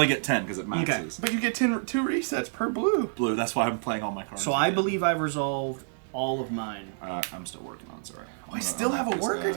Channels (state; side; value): silent; left; 59 dB below the other